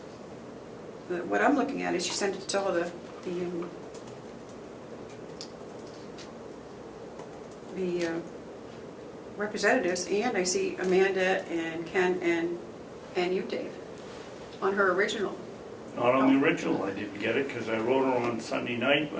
what I'm looking at is she sent it to all the representatives, and I see Amanda and Ken and you, Dave. on her original. Not on the original, I didn't get it, because I wrote her on Sunday night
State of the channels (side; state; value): both; identical; correlation 1.00